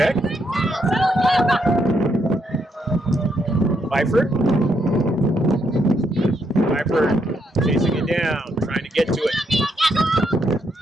Pfeiffer chasing it down, trying to get to it.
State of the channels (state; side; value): normal; both; correlation 0.77